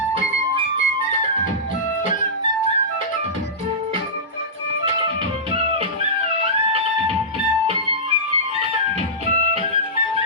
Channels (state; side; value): normal; both; correlation -0.16